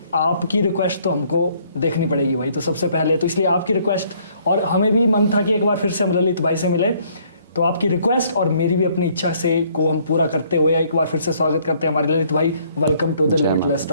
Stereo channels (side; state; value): both; inverted; correlation -0.64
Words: आपकी रिक्वेस्ट तो हमको देखनी पड़ेगी भाई। तो सबसे पहले तो इसलिए आपकी रिक्वेस्ट, और हमें भी मन था कि एक बार फिर से हम ललित भाई से मिले, तो आपकी रिक्वेस्ट और मेरी भी अपनी इच्छा से को हम पूरा करते हुए एक बार फिर से स्वागत करते हैं हमारे ललित भाई। Welcome to the limitless